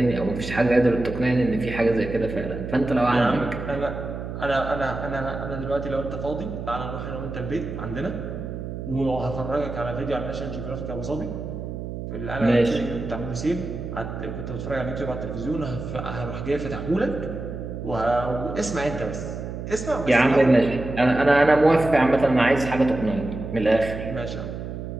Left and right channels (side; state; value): right; noise; hum, 7 dB below the sound